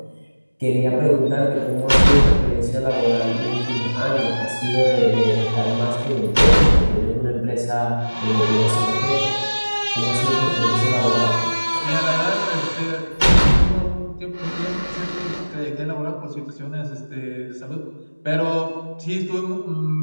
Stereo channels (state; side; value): inverted; both; correlation -1.00